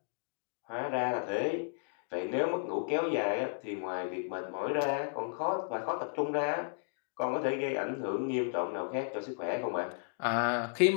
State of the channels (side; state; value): right; silent; digital silence